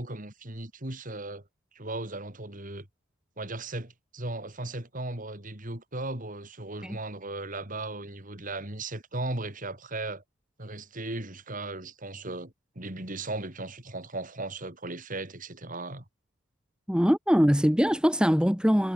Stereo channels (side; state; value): both; normal; correlation 0.84